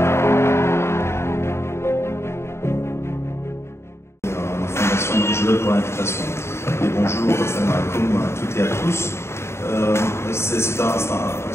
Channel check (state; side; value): late; right; 0.13 ms